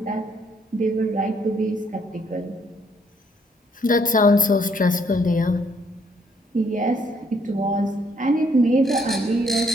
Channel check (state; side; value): normal; both; correlation 0.68